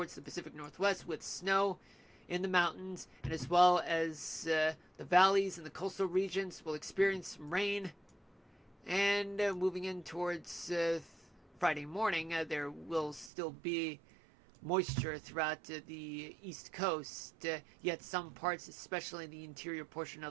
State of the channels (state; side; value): drops out; left; at 13.3 s